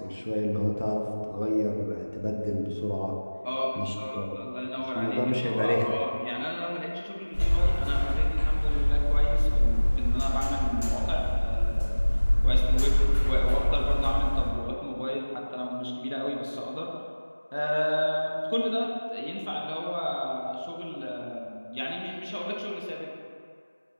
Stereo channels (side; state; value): both; inverted; correlation -1.00